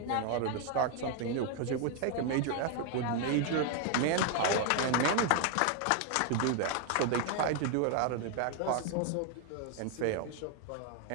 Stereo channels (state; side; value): different; both; correlation 0.01